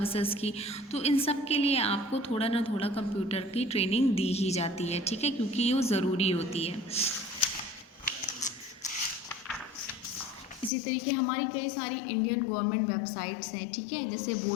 की। तो इन सब के लिए आपको थोड़ा ना थोड़ा कंप्यूटर की ट्रेनिंग दी ही जाती है। ठीक है, क्योंकि ये ज़रूरी होती है। इसी तरीके हमारी कई सारी इंडियन गवर्नमेंट वेबसाइट्स हैं। ठीक है, जैसे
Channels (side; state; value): right; drops out; at 10.7 s